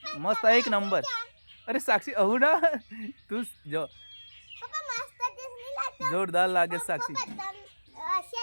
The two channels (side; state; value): both; inverted; correlation -1.00